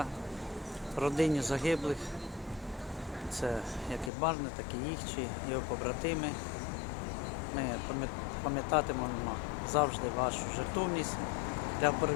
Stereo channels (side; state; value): right; drops out; at 4.1 s